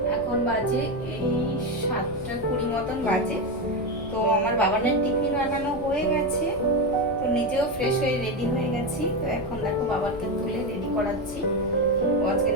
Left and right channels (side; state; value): left; noise; rumble, 14 dB below the sound